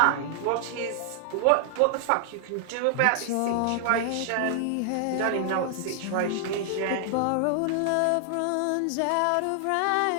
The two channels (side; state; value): both; different; correlation 0.00